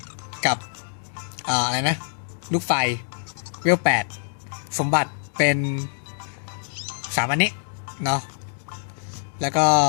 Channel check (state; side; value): silent; right; 62 dB below the other